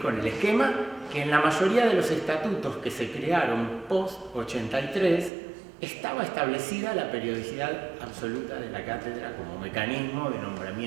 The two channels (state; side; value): drops out; left; at 5.3 s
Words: con el esquema que en la mayoría de los estatutos que se crearon post-83 estaba establecida la periodicidad absoluta de la cátedra como mecanismo de